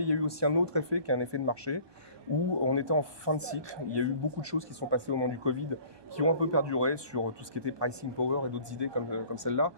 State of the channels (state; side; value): late; left; 1.2 ms